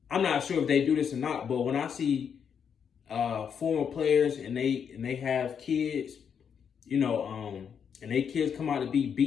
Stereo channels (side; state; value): right; quieter; 7.3 dB